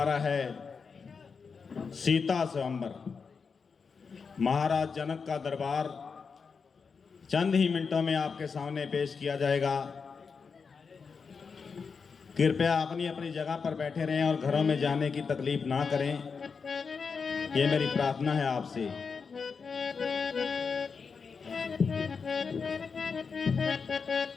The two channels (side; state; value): right; quieter; 5.4 dB